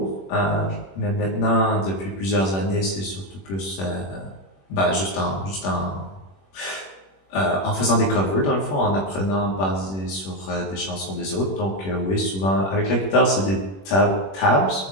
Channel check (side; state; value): right; late; 21 ms